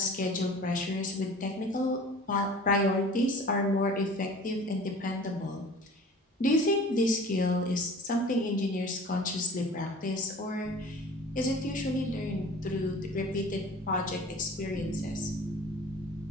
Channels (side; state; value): both; normal; correlation 0.44